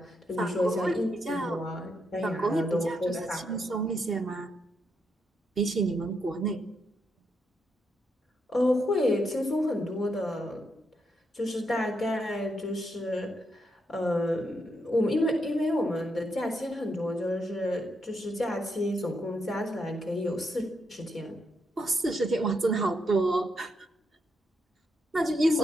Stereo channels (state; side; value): normal; both; correlation 0.80